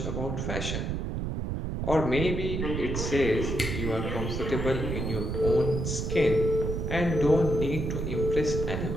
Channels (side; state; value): right; noise; rumble, 2 dB below the sound